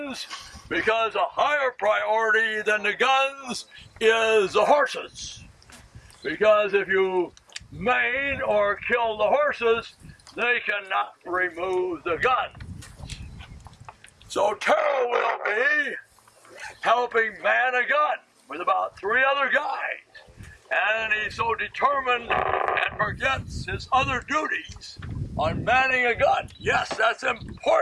because a higher priority than the guns is the horses. Because if you maim or kill the horses, they cannot remove the gun. So Terrell will be helping man a gun with about 3 other guys. And he's so determined and forgets his other duties on manning a gun. Yes, that's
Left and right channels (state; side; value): identical; both; correlation 1.00